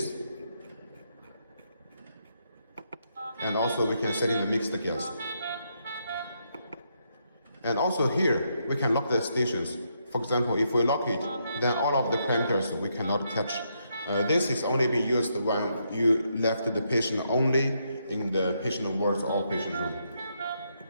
And also we can set in the mixed gas. And also here, we can lock the stations. For example, if we lock it, then all of the parameters we cannot touch. This is only being used when you left the patient only in the patient wards or patient room.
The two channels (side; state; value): both; inverted; correlation -0.78